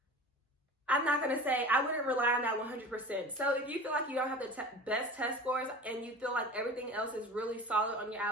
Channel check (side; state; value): both; normal; correlation 0.36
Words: I'm not going to say I wouldn't rely on that 100%. So if you feel like you don't have the best test scores and you feel like everything else is really solid on your